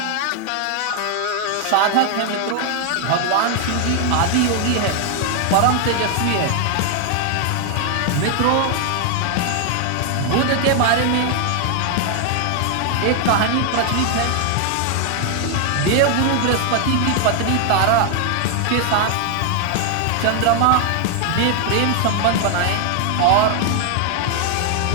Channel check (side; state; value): both; different; correlation 0.00